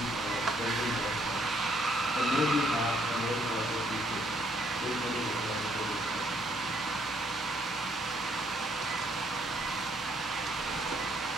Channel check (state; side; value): normal; both; correlation 0.68